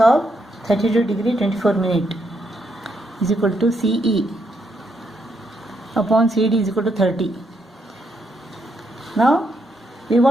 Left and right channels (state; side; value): normal; both; correlation 0.78